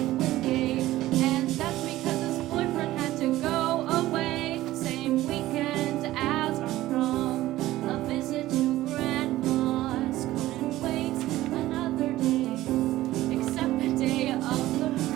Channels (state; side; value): quieter; left; 15.8 dB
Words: Wingate. And that's because his boyfriend had to go away, same weekend as our prom. A visit to Grandma's, couldn't wait another day, except the day of the